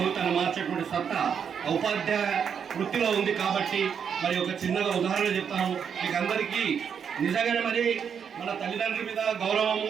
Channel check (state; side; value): quieter; left; 7.3 dB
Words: మార్చేటువంటి సత్తా ఉపాధ్యాయ వృత్తిలో ఉంది కాబట్టి మరి ఒక చిన్నగా ఉదాహరణ చెప్తాను మీకు అందరికీ। నిజంగానే మరి మన తల్లిదండ్రుల మీద గౌరవము,